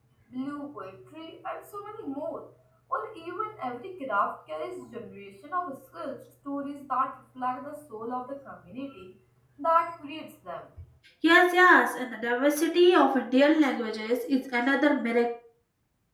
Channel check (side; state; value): both; identical; correlation 1.00